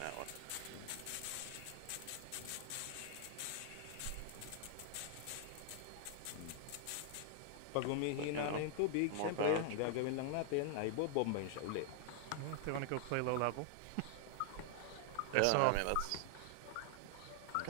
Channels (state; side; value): different; both; correlation 0.00